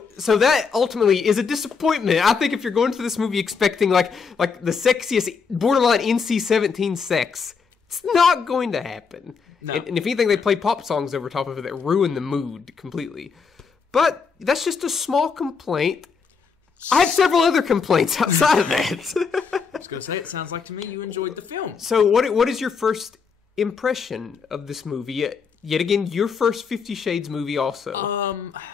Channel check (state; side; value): quieter; right; 5.6 dB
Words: that ultimately is a disappointment. I think if you're going to this movie expecting like the sexiest, borderline NC-17 sex, it's not going to happen. No. And if anything, they play pop songs over top of it that ruin the mood completely. But that's just a small complaint. I have several other complaints outside of that. I was going to say, it sounds like to me you enjoyed the film. So what is your first impression of this movie? Yet again, your first 50 Shades movie also.